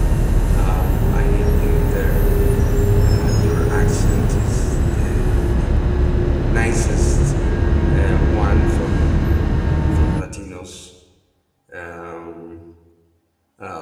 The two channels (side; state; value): both; identical; correlation 1.00